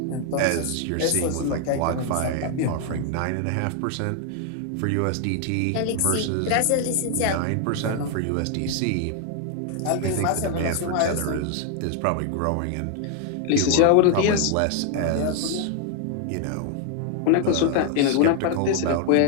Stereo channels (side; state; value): both; different; correlation 0.00